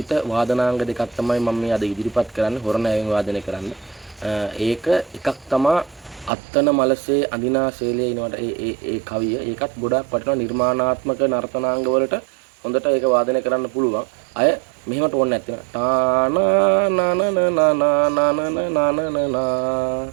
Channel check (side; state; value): left; drops out; at 6.3 s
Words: වාදනාංග දෙකක් තමයි මම මේ අද ඉදිරිපත් කරන්නේ හොරණෑවෙන් වාදනය කරන්න. ඒක එකක් තමයි අත්තන මලසේ අඳිනා ශෛලයේ ඉනවට ඒ කවිය. ඒකත් ගොඩාක් වටිනවා නිර්මාණාත්මක නර්තනාංග වලට හොඳට ඒක වාදනය කරන්න පුළුවන්. අය මෙහෙමට ඕනේ නැත්නම් ටානා නනන නනන